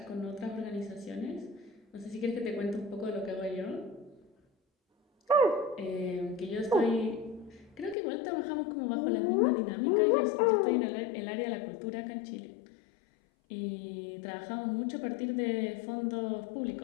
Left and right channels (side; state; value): right; drops out; at 8.0 s